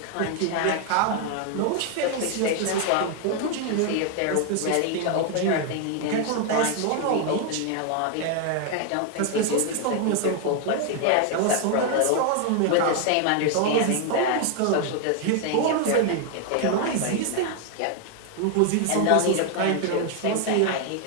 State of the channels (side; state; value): both; different; correlation 0.00